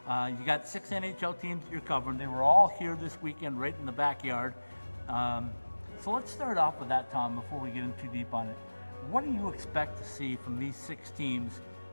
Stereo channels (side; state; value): both; inverted; correlation -1.00